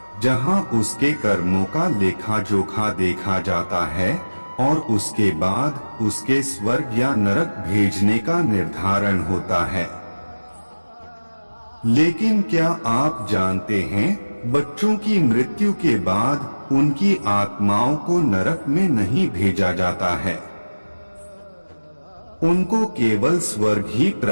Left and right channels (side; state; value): both; inverted; correlation -1.00